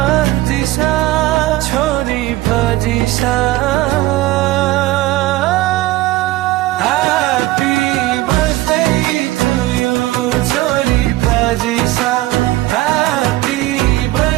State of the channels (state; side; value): quieter; left; 17.3 dB